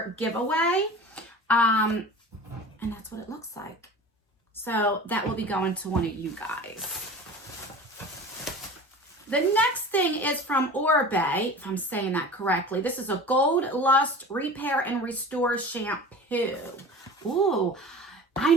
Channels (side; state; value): both; normal; correlation 0.38